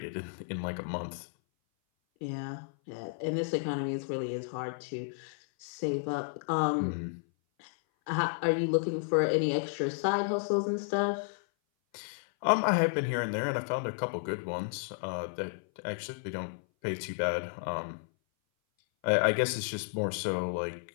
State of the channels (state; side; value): silent; right; 56 dB below the other